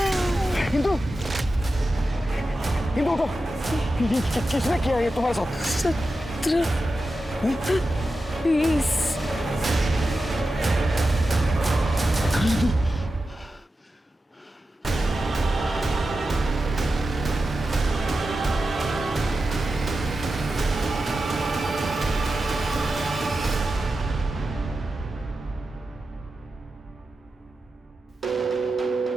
हिंदू, हिंदू उठो। किसने किया ये तुम्हारे साथ? 20।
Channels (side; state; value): both; normal; correlation 0.91